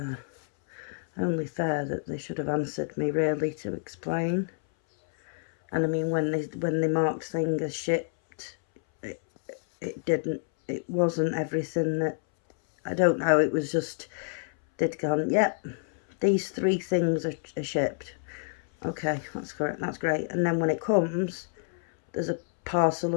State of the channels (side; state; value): right; silent; 59 dB below the other